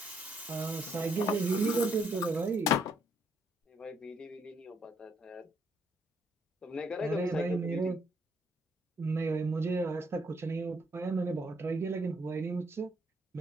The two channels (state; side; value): normal; both; correlation 0.71